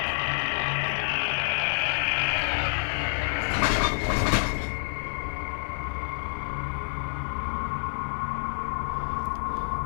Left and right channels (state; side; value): silent; right; digital silence